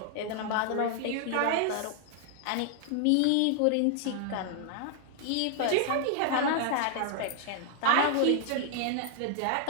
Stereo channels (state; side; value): different; both; correlation 0.00